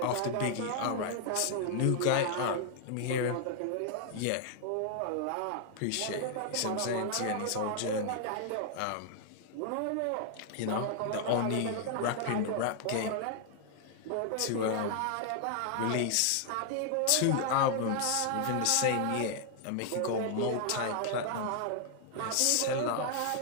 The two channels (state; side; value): different; both; correlation 0.00